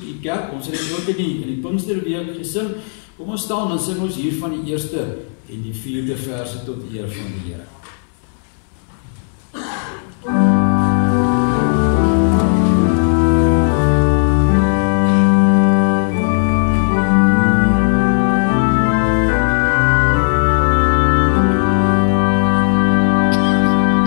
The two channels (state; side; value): silent; right; digital silence